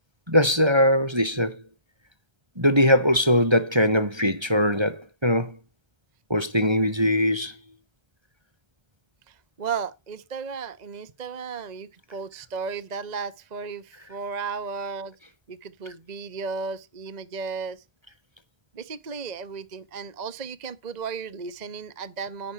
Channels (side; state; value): left; late; 1.3 ms